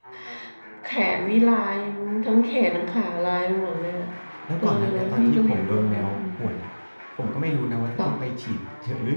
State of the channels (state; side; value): inverted; both; correlation -1.00